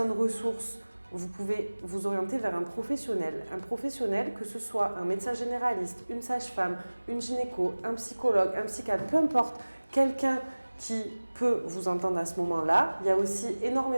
ressources, vous pouvez vous orienter vers un professionnel. Un professionnel, que ce soit un médecin généraliste, une sage-femme, une gynéco, un psychologue, un psychiatre, peu importe, quelqu'un qui peut vous entendre à ce moment-là. Il y a aussi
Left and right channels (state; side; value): inverted; both; correlation -1.00